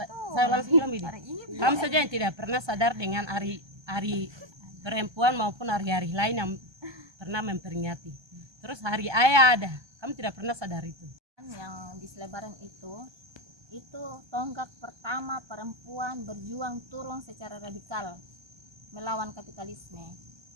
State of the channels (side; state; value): left; late; 1.2 ms